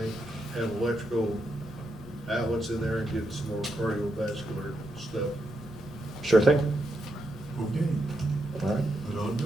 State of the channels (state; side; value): normal; both; correlation 0.83